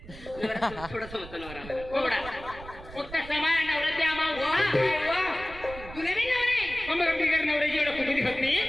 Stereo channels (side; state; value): right; noise; rumble, 15 dB below the sound